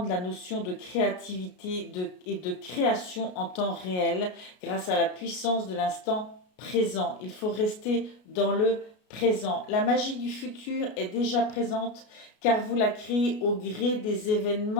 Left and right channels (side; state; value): right; late; 33 ms